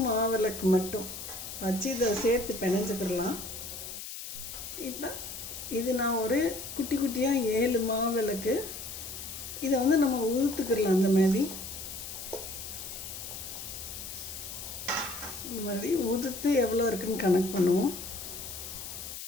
மாவிளக்கு மட்டும் வச்சு இதை சேர்த்து பிணைஞ்சுக்கிடலாம். இப்போ இது நான் ஒரு குட்டி குட்டியாக 7 மாவிளக்கு இதை வந்து நம்ம உதுத்துக்கிடலாம். இந்த மாதிரி உதுத்து எவ்வளோ இருக்குன்னு கணக்கு பண்ணுவோம்.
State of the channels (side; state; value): left; noise; hiss, 9 dB below the sound